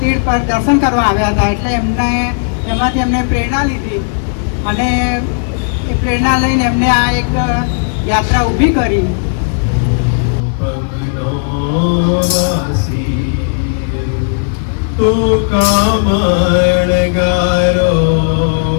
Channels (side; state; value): right; silent; 71 dB below the other